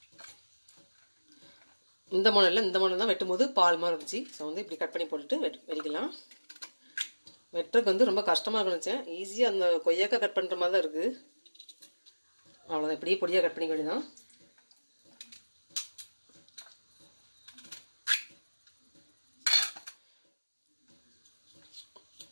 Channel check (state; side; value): inverted; both; correlation -1.00